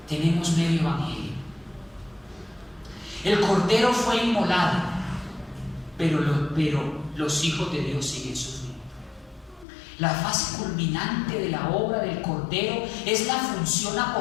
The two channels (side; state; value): right; drops out; at 9.7 s